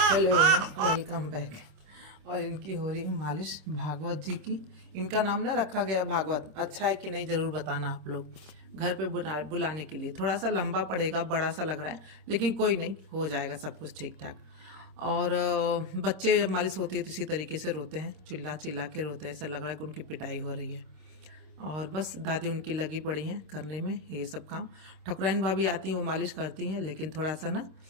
Hello welcome back. और इनकी हो रही है मालिश भागवत जी की। इनका नाम ना रखा गया भागवत, अच्छा है कि नहीं ज़रूर बताना आप लोग। घर पे बुलाने के लिए थोड़ा सा लंबा पड़ेगा, बड़ा सा लग रहा है, लेकिन कोई नहीं, हो जाएगा सब कुछ ठीक ठाक। और बच्चे जब मालिश होती है तो इसी तरीके से रोते हैं, चिल्ला चिल्ला के रोते हैं, ऐसा लग रहा है कि उनकी पिटाई हो रही है। और बस दादी उनकी लगी पड़ी हैं करने में ये सब काम। ठकुराइन भाभी आती हैं, वो मालिश करती हैं, लेकिन थोड़ा सा ना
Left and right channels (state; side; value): late; left; 26 ms